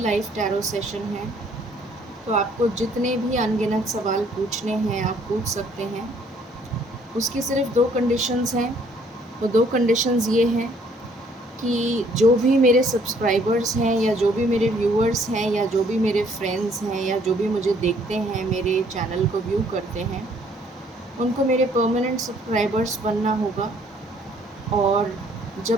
टैरो सेशन है, तो आपको जितने भी अनगिनत सवाल पूछने हैं आप पूछ सकते हैं। उसकी सिर्फ 2 कंडीशंस हैं। वो 2 कंडीशंस ये हैं कि जो भी मेरे सब्सक्राइबर्स हैं या जो भी मेरे व्यूअर्स हैं या जो भी मेरे फ्रेंड्स हैं या जो भी मुझे देखते हैं, मेरे चैनल को व्यू करते हैं, उनको मेरे परमानेंट सब्सक्राइबर्स बनना होगा। और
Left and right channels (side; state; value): both; normal; correlation 0.63